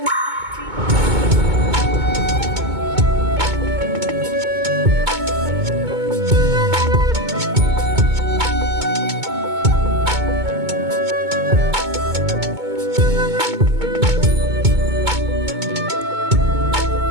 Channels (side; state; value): left; late; 2.2 ms